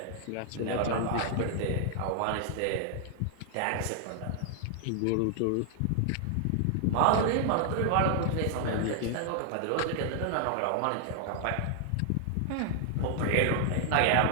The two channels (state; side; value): different; both; correlation 0.00